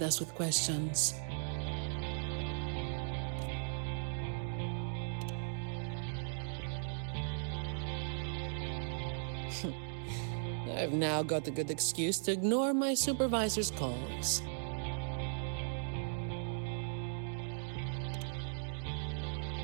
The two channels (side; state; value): left; silent; digital silence